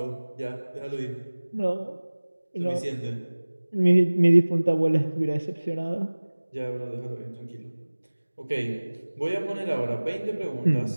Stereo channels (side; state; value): both; inverted; correlation -1.00